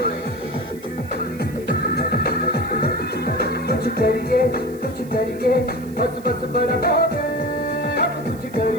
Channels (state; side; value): noise; right; hiss, 23 dB below the sound